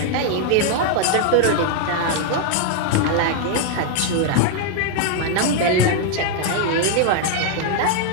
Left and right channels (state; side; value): different; both; correlation 0.00